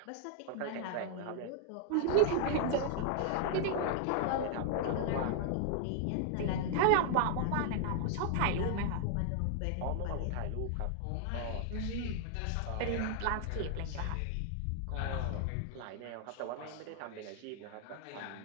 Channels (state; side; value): different; both; correlation 0.00